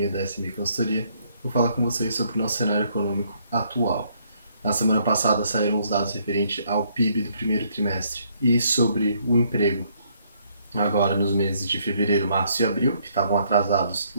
da SMI Consultoria. Vou falar com vocês sobre o nosso cenário econômico atual. Na semana passada saíram os dados referentes ao PIB do primeiro trimestre e sobre o emprego, agora nos meses de fevereiro, março e abril, que estavam atrasados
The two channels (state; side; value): inverted; both; correlation -0.69